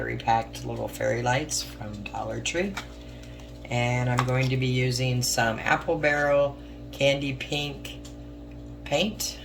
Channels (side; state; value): both; identical; correlation 1.00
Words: packed little fairy lights from Dollar Tree. And I'm going to be using some apple barrel candy pink paint,